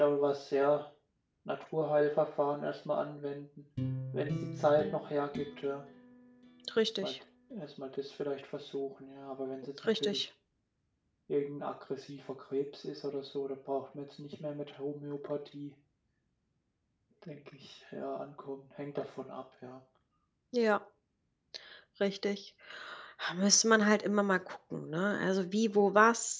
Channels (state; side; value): identical; both; correlation 1.00